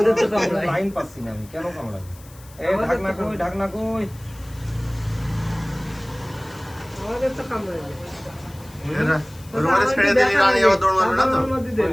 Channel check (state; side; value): noise; left; hiss, 23 dB below the sound